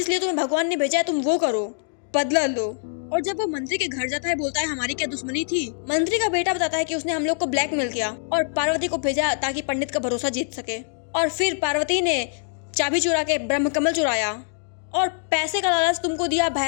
तुम्हें भगवान ने भेजा है तुम वो करो, बदला लो। और जब वो मंत्री के घर जाता है बोलता है हमारी क्या दुश्मनी थी। मंत्री का बेटा बताता है कि उसने हम लोग को ब्लैकमेल किया और पार्वती को भेजा ताकि पंडित का भरोसा जीत सके। और फिर पार्वती ने चाबी चुरा के ब्रह्म कमल चुराया और पैसे का लालच तुमको दिया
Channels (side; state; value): right; silent; digital silence